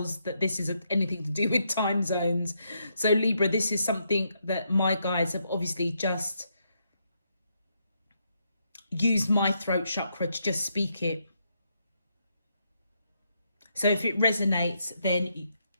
that this is anything to do with time zones. So Libra, this is something that my guides have obviously just used my throat chakra to just speak it. So if it resonates, then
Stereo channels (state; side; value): inverted; both; correlation -0.78